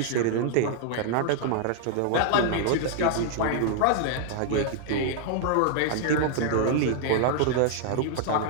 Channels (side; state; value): both; different; correlation 0.00